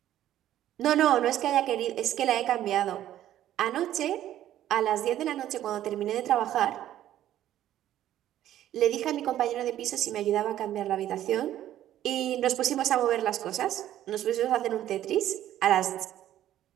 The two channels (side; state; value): left; quieter; 12.4 dB